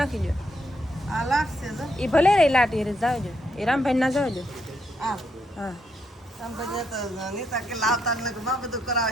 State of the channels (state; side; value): normal; both; correlation 0.77